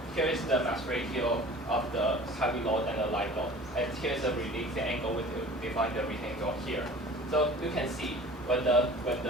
is the mass ratio of the heavy load and the light load, and here's the release angle we define the release angle here. So you can see when the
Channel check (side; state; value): both; normal; correlation 0.44